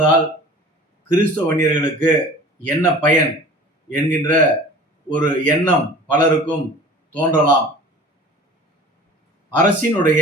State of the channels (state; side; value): normal; both; correlation 0.43